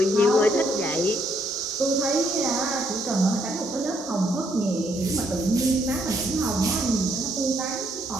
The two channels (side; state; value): both; normal; correlation 0.72